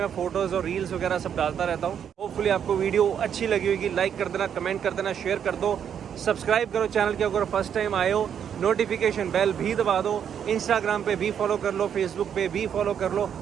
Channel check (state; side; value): quieter; left; 8.5 dB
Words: फ़ोटोज़ और रील्स वगैरह सब डालता रहता हूँ। होपफुली आपको वीडियो अच्छी लगी होगी। लाइक कर देना, कमेंट कर देना, शेयर कर दो, सब्सक्राइब करो चैनल के अगर फर्स्ट टाइम आए हो, नोटिफिकेशन बेल भी दबा दो। इंस्टाग्राम पे भी फॉलो कर लो, फेसबुक पे भी फॉलो कर लो।